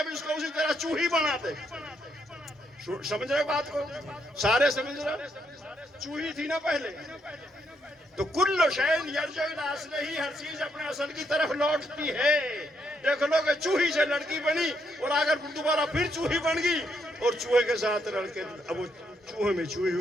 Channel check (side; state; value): both; normal; correlation 0.76